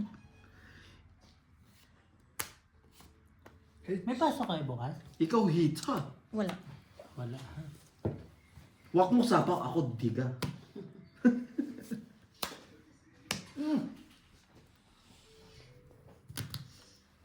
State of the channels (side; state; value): both; identical; correlation 1.00